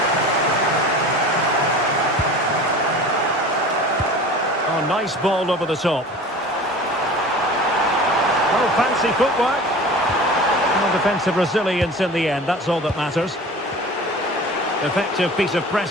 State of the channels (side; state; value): both; normal; correlation 0.39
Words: Nice ball over the top. Oh, fancy footwork. And defensive resilience in the end, that's all that matters. Effective piece of